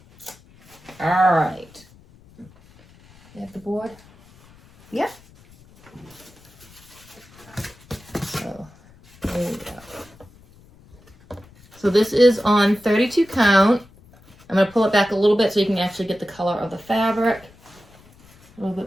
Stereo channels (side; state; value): left; noise; rumble, 26 dB below the sound